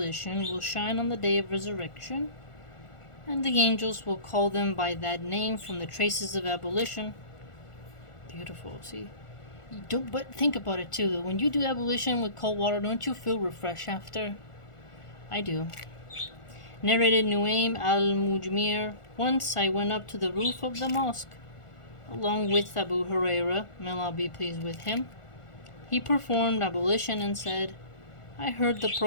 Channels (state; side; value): late; right; 1.4 ms